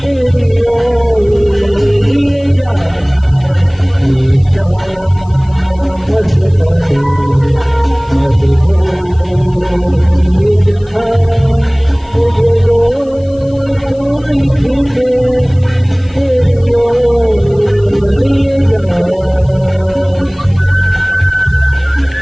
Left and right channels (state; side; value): noise; left; hiss, 30 dB below the sound